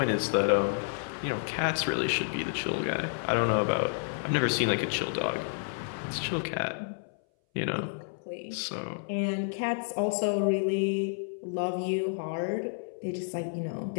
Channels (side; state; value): right; silent; 58 dB below the other